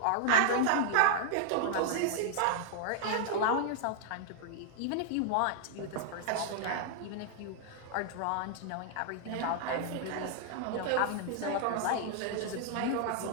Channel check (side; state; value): both; different; correlation -0.01